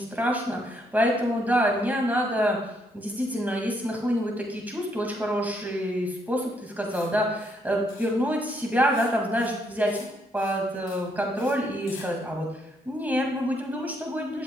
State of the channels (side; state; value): both; normal; correlation 0.73